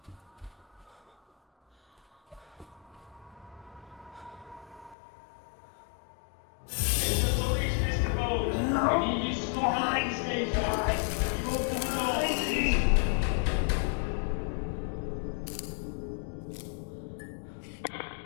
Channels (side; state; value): right; drops out; at 5.0 s